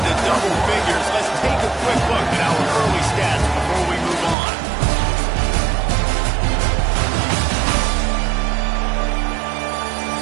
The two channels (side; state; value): left; drops out; at 4.4 s